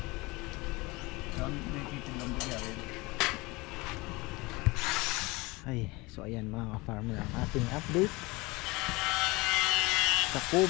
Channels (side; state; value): right; quieter; 23.6 dB